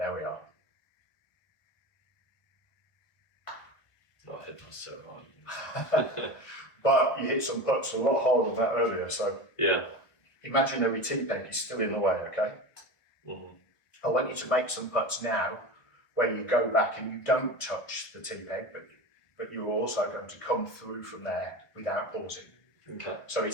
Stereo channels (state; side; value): late; right; 1.2 ms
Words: we are. I hit that so hard. But you hit some putts a lot harder than that earlier, so imaginary tee peg is still in the way, okay? I want you to make some putts now where you go back and you don't touch the tee peg, but you're also going to come through from there without pausing. Okay. So